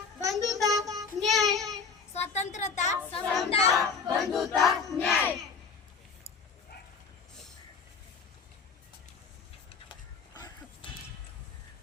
बंधुता, न्याय. स्वतंत्रता, समता, बंधुता, न्याय.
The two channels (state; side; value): quieter; right; 5.3 dB